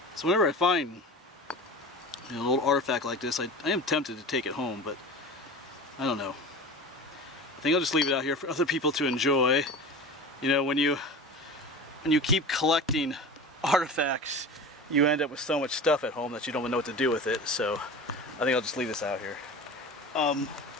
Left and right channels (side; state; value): both; normal; correlation 0.33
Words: So whenever I find a little artifact like this, I am tempted to take it home, but I don't know. I think I'll just leave it out here for other people to enjoy. You know, when you keep collecting artifacts, you end up with so much stuff at home that you don't even know what to do with it. So I think I'll just leave this out here.